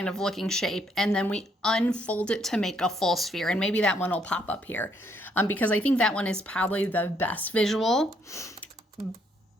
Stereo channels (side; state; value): both; normal; correlation 0.70